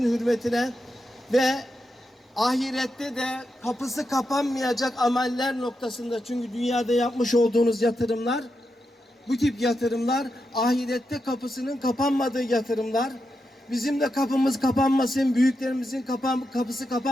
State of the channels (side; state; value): both; normal; correlation 0.86